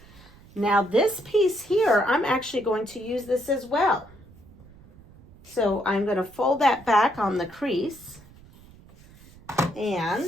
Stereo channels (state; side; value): noise; right; rumble, 23 dB below the sound